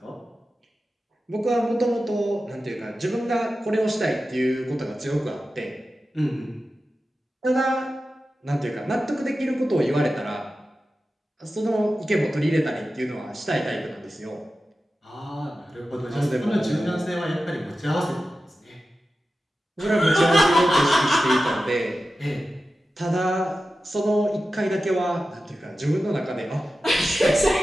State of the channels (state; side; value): normal; both; correlation 0.93